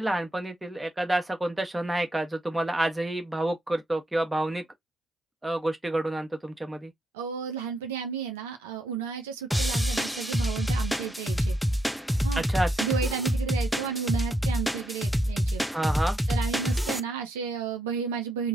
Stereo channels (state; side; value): normal; both; correlation 0.79